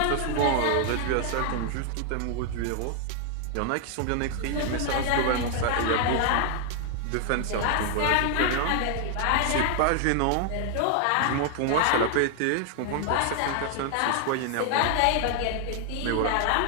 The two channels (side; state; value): both; different; correlation 0.00